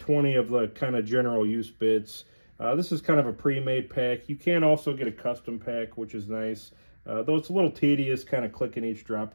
of the kind of general use bits. This is kind of a pre-made pack. You can also get a custom pack, which is nice, though it's a little tedious kind of clicking each drop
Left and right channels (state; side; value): inverted; both; correlation -1.00